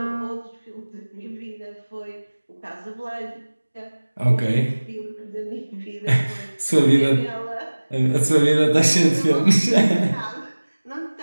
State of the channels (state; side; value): inverted; both; correlation -1.00